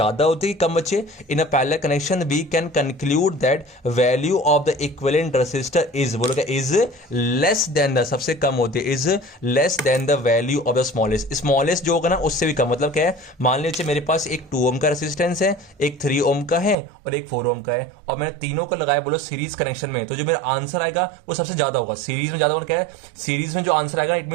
होती है कम बच्चे। In a parallel connection we can conclude that value of the equivalent resistor is, बोलो क्या इज लेस देन द, सबसे कम होती है is less than the value of the smallest. Smallest जो होगा ना उससे भी कम, मतलब क्या है, मान लीजिए मेरे पास एक 2 ओम का रेसिस्टेंस है, एक 3 ओम का है और एक 4 ओम का है, और मैंने तीनों को लगाया बोलो सीरीज कनेक्शन में, तो जो मेरा आंसर आएगा वो सबसे ज्यादा होगा। सीरीज में ज्यादा होगा क्या है, सीरीज में जो आंसर आंसर आएगा इट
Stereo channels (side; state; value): left; drops out; at 16.8 s